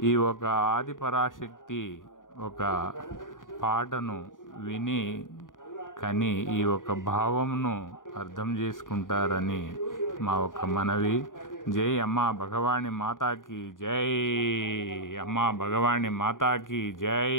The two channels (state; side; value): late; right; 0.89 ms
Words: ఈ ఒక ఆదిపరాశక్తి ఒక పాటను విని కానీ ఈ ఒక భావమును అర్థం చేసుకుంటారని మా ఒక మనవి. జై అమ్మా భగవాని మాతాకి జై, అమ్మా భగవాని మాతాకి